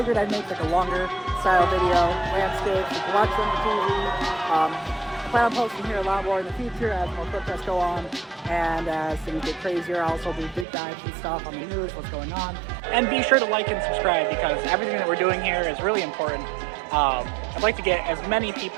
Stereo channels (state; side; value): drops out; left; at 10.7 s